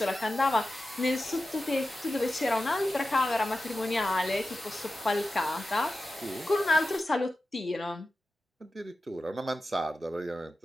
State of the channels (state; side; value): normal; both; correlation 0.93